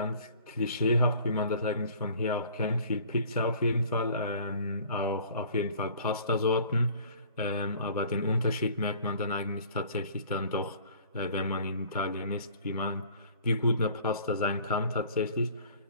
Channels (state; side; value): inverted; both; correlation -0.51